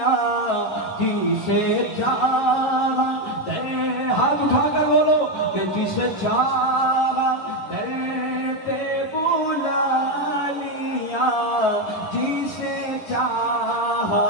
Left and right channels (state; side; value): late; right; 11 ms